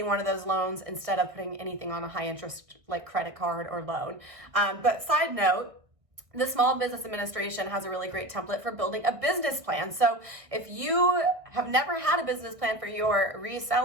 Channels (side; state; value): left; late; 1.6 ms